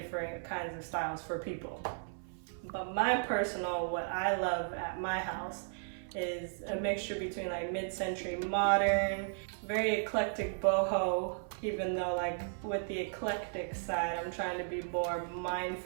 kinds of styles for people. But my personal, what I love at my house is a mixture between mid-century modern, very eclectic boho, even though with the eclectic side, I'm trying to be more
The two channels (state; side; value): silent; left; 54 dB below the other